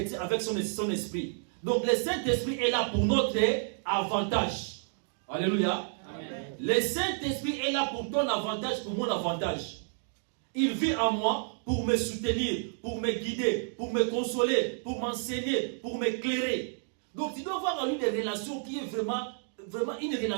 avec son esprit. Donc, le Saint-Esprit est là pour notre avantage. Alléluia. Amen. Le Saint-Esprit est là pour ton avantage, pour mon avantage. Il vit en moi pour me soutenir, pour me guider, pour me consoler, pour m'enseigner, pour m'éclairer. Donc, tu dois avoir en lui des relations qui est vraiment une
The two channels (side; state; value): left; silent; digital silence